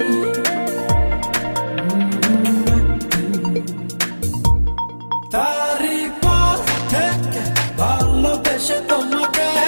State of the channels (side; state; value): both; inverted; correlation -1.00